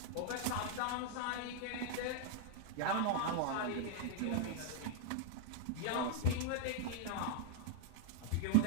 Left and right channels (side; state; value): both; different; correlation -0.01